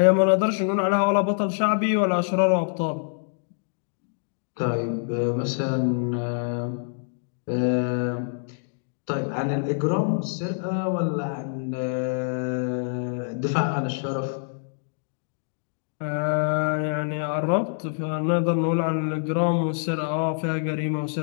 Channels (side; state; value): right; silent; digital silence